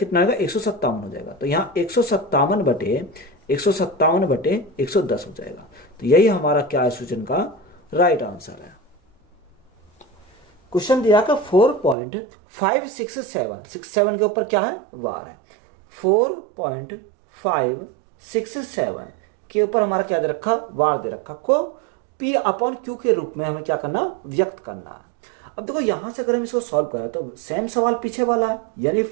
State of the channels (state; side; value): drops out; left; at 12.0 s